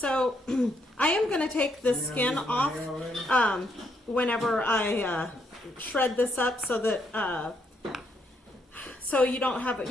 I am going to take the skin off whenever I shred this up, so that so you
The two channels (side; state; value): both; normal; correlation 0.75